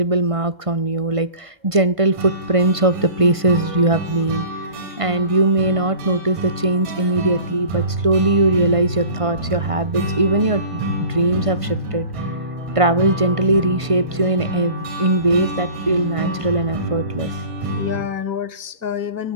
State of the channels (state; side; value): late; left; 1.5 ms